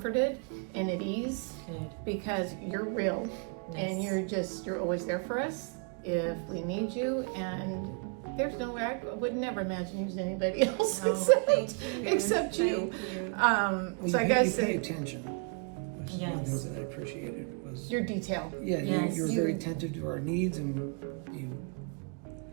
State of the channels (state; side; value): quieter; left; 37.4 dB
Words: and at ease because you're real and you're always there for us if we need you. And there's no way, I would never imagine using anybody else except you. So I guess you pay attention. Which is one of the things that I appreciated was your detail. You were very attentive to our needs, and